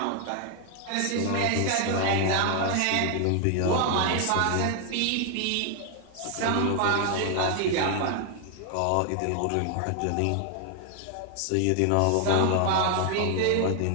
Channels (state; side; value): different; both; correlation 0.00